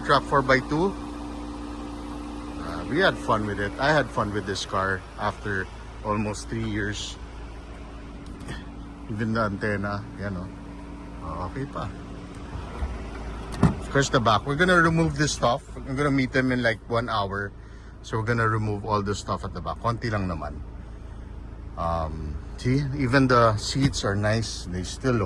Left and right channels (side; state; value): both; identical; correlation 1.00